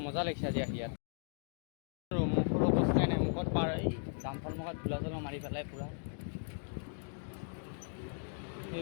মজা লাগিছে আজি আহি ইয়াত মুখৰ অৱস্থাই নাই মুখত পাৰ এই ডাম্পাৰ মুখত ধূলা চলা মাৰি পেলাই পূৰা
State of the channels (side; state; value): right; silent; digital silence